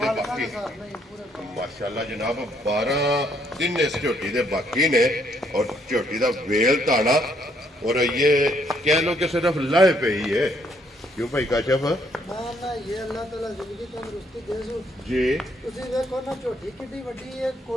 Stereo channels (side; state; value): both; normal; correlation 0.70